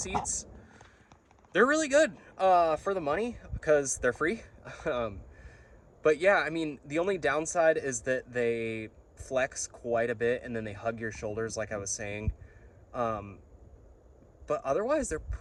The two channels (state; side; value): identical; both; correlation 1.00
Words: They're really good for the money because they're free. But yeah, I mean, the only downside is that they flex quite a bit and then they hug your shoulders, like I was saying. But otherwise, they're